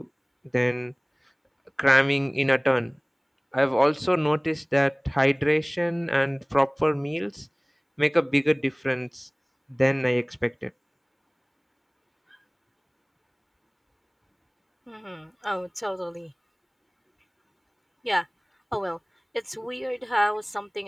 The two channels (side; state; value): both; identical; correlation 1.00